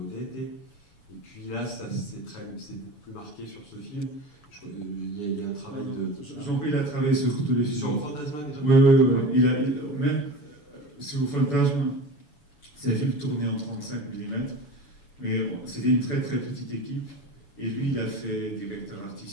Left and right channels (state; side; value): late; right; 7.0 ms